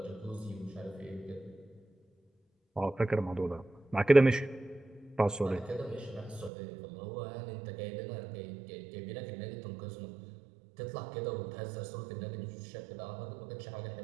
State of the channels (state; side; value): drops out; left; at 6.5 s